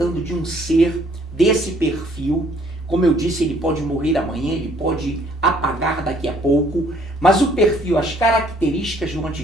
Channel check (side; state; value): both; normal; correlation 0.62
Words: de um ser desse perfil. Como eu disse, ele pode morrer amanhã, ele pode apagar daqui a pouco, mas o perfil, as características do